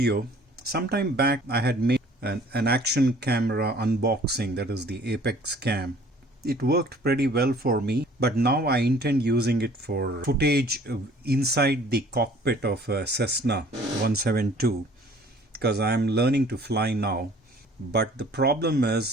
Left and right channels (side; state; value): both; normal; correlation 0.53